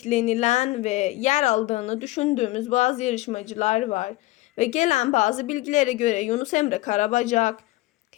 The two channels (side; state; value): right; quieter; 18.9 dB